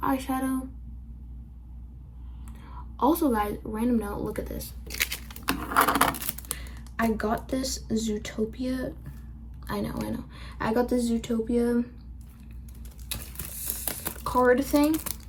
Also guys, random note, look at this. I got this Zootopia. I know. I got this Zootopia card thing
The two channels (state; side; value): identical; both; correlation 1.00